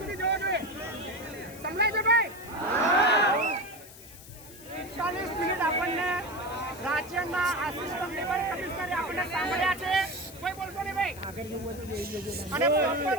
મિનિટ આપણને રાજ્યના આસિસ્ટન્ટ લેબર કમિશનરે આપણને સાંભળ્યા છે. કોઈ બોલતો નહીં ભાઈ. અને પ્રોપર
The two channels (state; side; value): noise; left; hiss, 18 dB below the sound